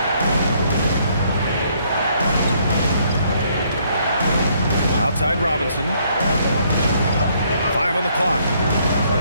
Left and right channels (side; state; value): both; inverted; correlation -0.68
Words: Outside Robinson. 5 on the clock.